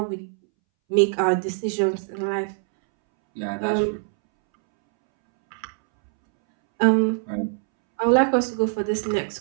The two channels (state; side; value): silent; left; 63 dB below the other